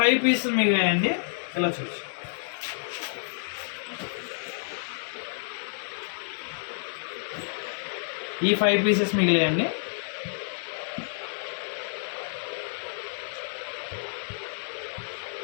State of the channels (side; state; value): right; silent; digital silence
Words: పీసులు మిగిలాయండి. ఇలా చూసి ఈ 5 పీసెస్ మిగిలాయండి.